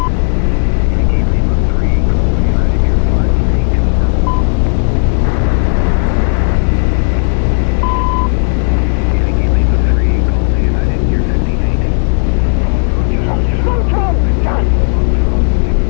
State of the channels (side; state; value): right; silent; digital silence